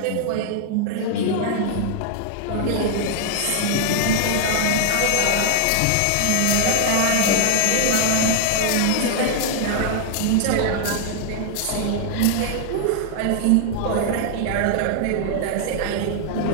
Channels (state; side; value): different; both; correlation 0.00